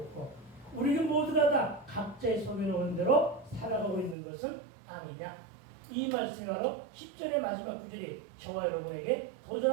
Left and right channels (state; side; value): drops out; left; at 4.2 s